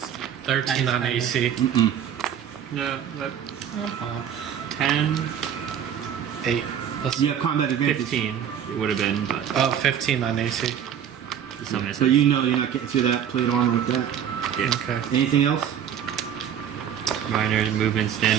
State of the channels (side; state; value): left; quieter; 9.2 dB